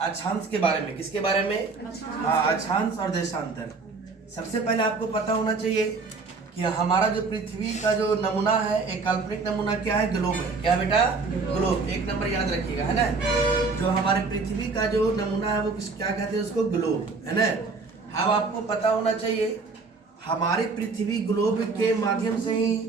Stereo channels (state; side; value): quieter; left; 4.2 dB